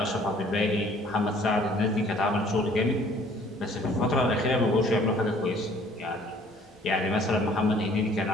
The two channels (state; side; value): normal; both; correlation 0.56